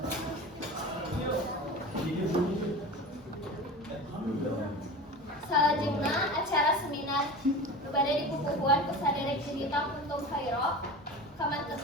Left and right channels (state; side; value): normal; both; correlation 0.32